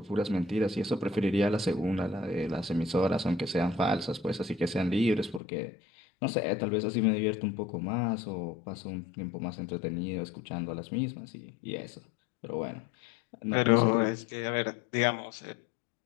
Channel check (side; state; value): right; drops out; at 5.4 s